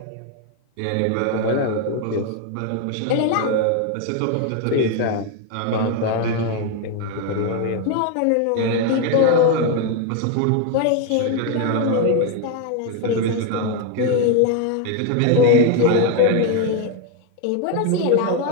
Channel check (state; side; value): different; both; correlation 0.01